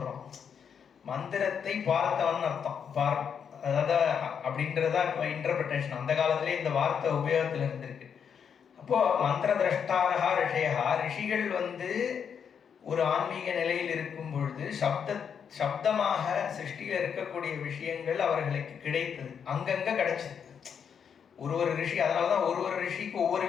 மந்திரத்தை பார்த்தவன் அர்த்தம். அதாவது அப்படின்றதா இப்போ இன்டர்பிரிட்டேஷன். அந்த காலத்திலே இந்த வார்த்தை உபயோகத்தில் இருந்திருக்கு. அப்போ மந்திர திரஷ்டாரகா ரிஷயா, ரிஷிகள் வந்து ஒரு ஆன்மீக நிலையில் இருக்கும் பொழுது சப்தமாக சிருஷ்டியில் இருக்கக்கூடிய விஷயங்கள் அவர்களுக்கு கிடைத்தது, அங்கங்க கிடைச்சது. ஒரு ரிஷி, அதனாலதான் ஒரு ரிஷிக்கு ஒவ்வொரு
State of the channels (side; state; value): right; quieter; 7.3 dB